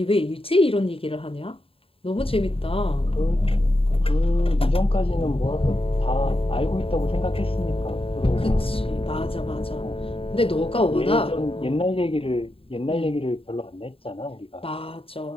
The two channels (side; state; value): right; late; 0.27 ms